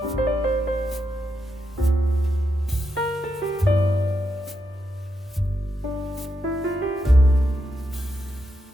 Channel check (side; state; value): both; normal; correlation 0.84